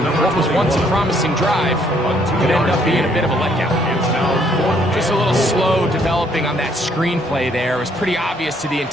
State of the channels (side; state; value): both; normal; correlation 0.67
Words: what was once a promising drive could end up being a bit of a letdown. Just a little slow developing on that screenplay there. It was pretty obvious to the